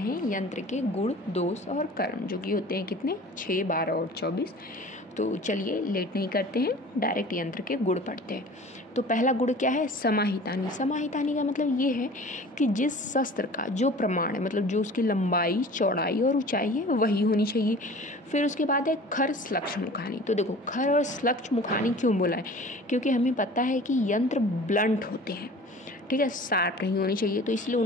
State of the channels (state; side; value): normal; both; correlation 0.43